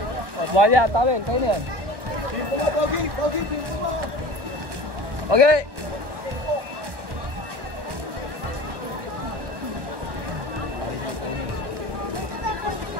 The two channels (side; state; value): left; late; 1.1 ms